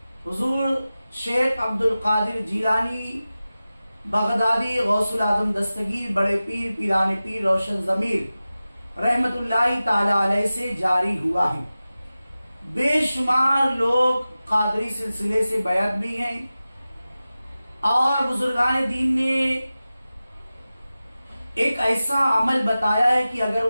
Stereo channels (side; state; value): both; inverted; correlation -0.95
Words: حضور شیخ عبدالقادر جیلانی بغدادی غوث العظم دستگیر بڑے پیر پیران پیر روشن ضمیر رحمت اللہ تعالی علیہ سے جاری ہوا ہے۔ بے شمار لوگ قادری سلسلے سے بیعت بھی ہیں اور بزرگان دین نے ایک ایسا عمل بتایا ہے کہ اگر